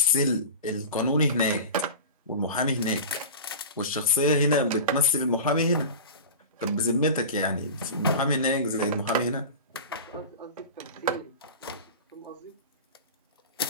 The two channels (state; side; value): inverted; both; correlation -0.31